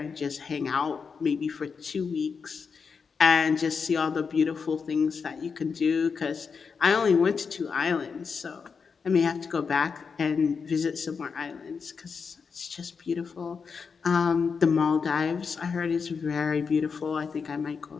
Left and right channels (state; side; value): quieter; right; 5.6 dB